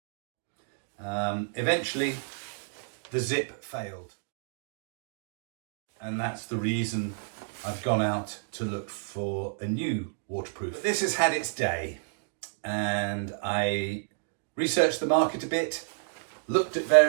Eventually, the zip failed. And that's the reason I've gone out to look for a new waterproof. But this has had its day, and I researched the market a bit, looked at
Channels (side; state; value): left; silent; digital silence